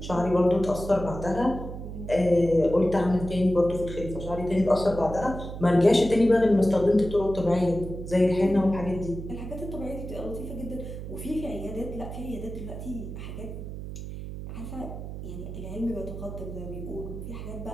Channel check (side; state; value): right; noise; hum, 9 dB below the sound